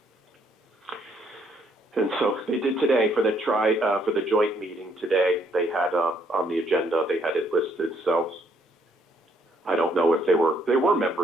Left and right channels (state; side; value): normal; both; correlation 0.69